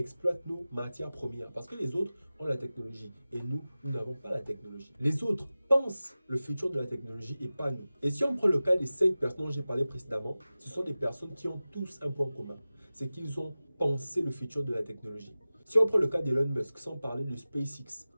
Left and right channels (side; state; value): both; inverted; correlation -0.96